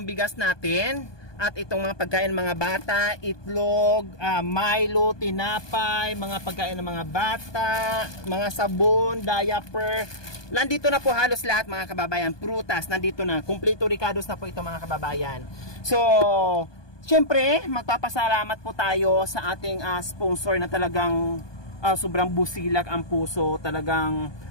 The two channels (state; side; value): late; right; 1.2 ms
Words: bigas natin at itong mga pagkain ng mga bata, itlog, Milo, tinapay, mga pagkain ng mga bata, mga sabon, diaper. Nandito na po halos lahat mga kababayan. Prutas, nandito na. Kompleto Ricados na po ito mga kababayan. So, siyempre, magpapasalamat po tayo sa ating sponsor na talagang sobrang busilak ang puso. Talagang